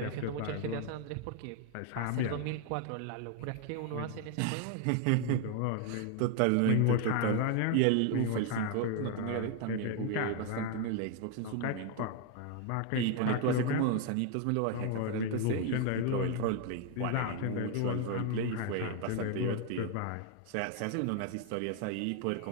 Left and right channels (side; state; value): both; different; correlation 0.00